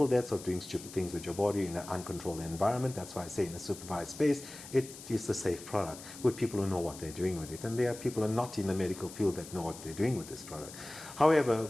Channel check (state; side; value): noise; left; hiss, 15 dB below the sound